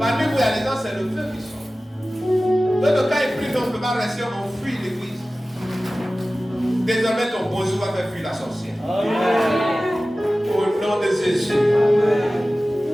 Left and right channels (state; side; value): normal; both; correlation 0.96